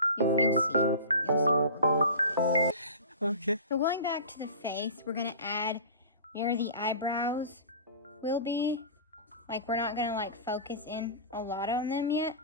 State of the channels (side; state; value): both; inverted; correlation -0.34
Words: You'll see where we're going with this. Okay. So going back to the face, we're gonna add where the eyebrows will be. Like we're not gonna like focus in a lot on them yet,